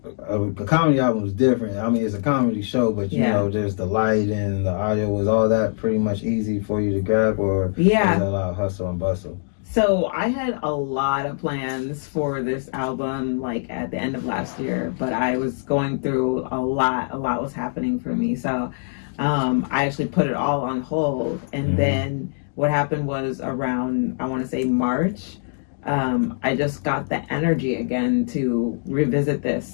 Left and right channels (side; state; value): right; silent; digital silence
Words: a comedy album is different. I mean, it's a comedy show, but you know, there's the light and the audio. Was all that pretty much easy for you to grab, or was it a lot of hustle and bustle? So I had a lot of plans for this album, like at the end of last year, but I was going through a lot was happening for me. So I actually put it all on hold. And then what happened was around, I want to say March, I just got the energy again to revisit